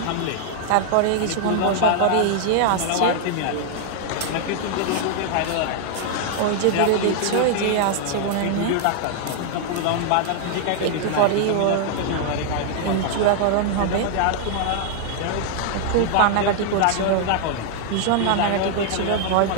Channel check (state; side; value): different; both; correlation 0.00